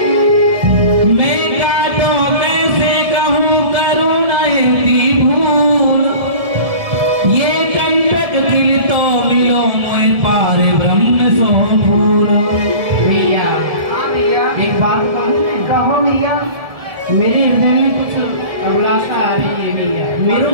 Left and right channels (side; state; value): left; late; 1.7 ms